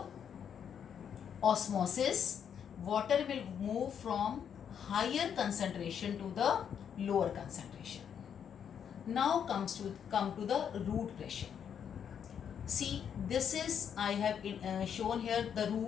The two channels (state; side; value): quieter; right; 8.1 dB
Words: osmosis. Water will move from higher concentration to the lower concentration. Now come to the root pressure. See, this is, I have shown here the